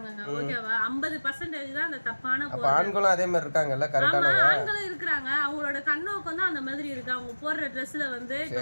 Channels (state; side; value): inverted; both; correlation -1.00